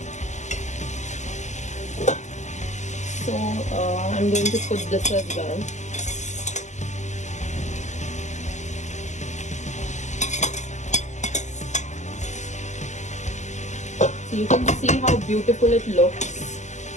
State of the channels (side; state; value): right; late; 0.34 ms